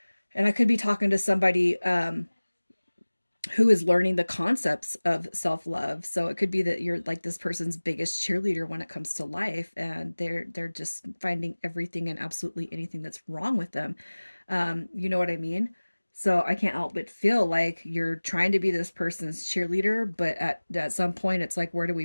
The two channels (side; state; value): both; inverted; correlation -1.00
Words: And I could be talking to somebody who is learning the concepts of self-love. So it could be that you're like this person's biggest cheerleader when it comes to life, and they're just finding everything and absolutely anything that's wrong with them. You know what I mean? So I can't help but feel like you're trying to be this person's cheerleader, but at some point it's like, where do